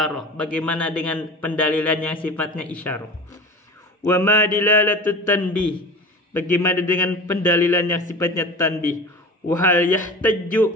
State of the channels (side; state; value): both; normal; correlation 0.34